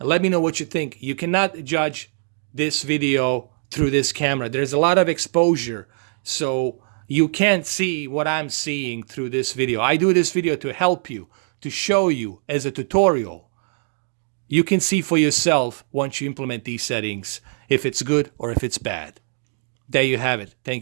let me know what you think. You cannot judge this video through this camera. There's a lot of exposure. So you can't see what I'm seeing through this video. I do this video to help you, to show you as a tutorial. You can see for yourself once you implement these settings if it's good or if it's bad. There you have it.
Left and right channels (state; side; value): silent; left; digital silence